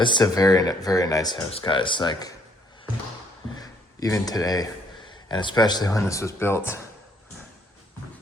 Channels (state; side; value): normal; both; correlation 0.66